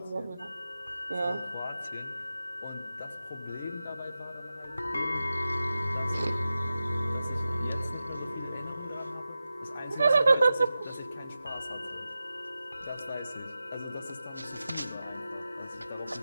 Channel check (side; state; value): both; inverted; correlation -0.93